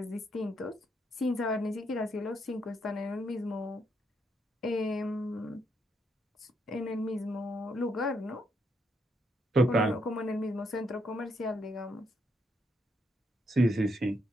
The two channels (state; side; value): normal; both; correlation 0.76